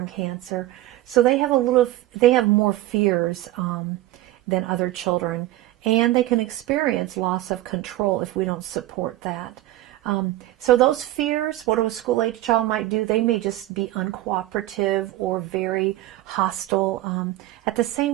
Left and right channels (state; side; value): quieter; left; 16.0 dB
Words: cancer. So they have more fears than other children, and they can experience loss of control if we don't support that. So those fears, what a school-age child might do, they may just be uncooperative or very hostile. At the